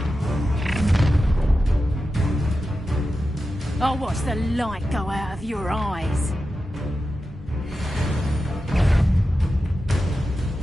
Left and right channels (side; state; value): both; normal; correlation 0.92